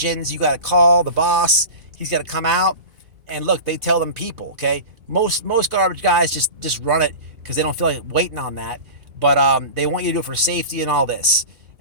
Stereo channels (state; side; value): late; left; 2.4 ms